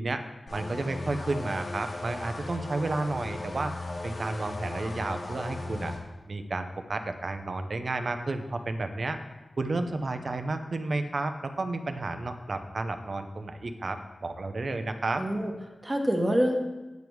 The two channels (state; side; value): normal; both; correlation 0.95